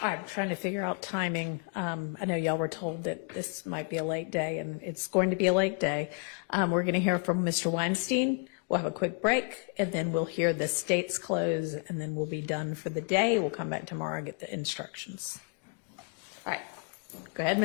I'm trying to figure out timing. I know y'all were told that this might be a late day, and it's going to be a late day. We're going to hear from Mr. Weinstein. We'll have a quick break, and then we'll hear the state's close, and then we'll be done for the day. We'll come back tomorrow and get the instructions. All right. Go ahead,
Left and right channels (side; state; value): right; quieter; 34.8 dB